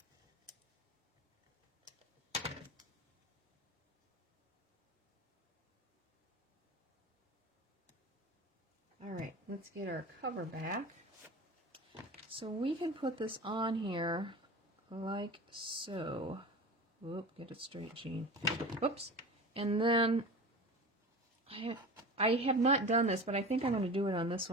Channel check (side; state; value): both; normal; correlation 0.33